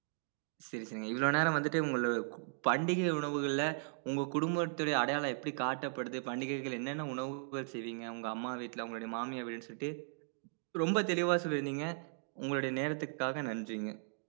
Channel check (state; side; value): silent; left; digital silence